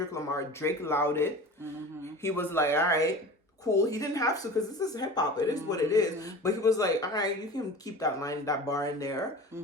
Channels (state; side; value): normal; both; correlation 0.36